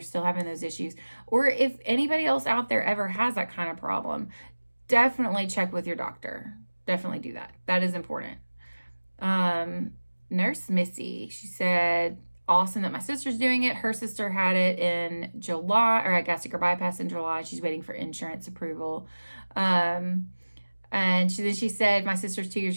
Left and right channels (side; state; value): both; inverted; correlation -1.00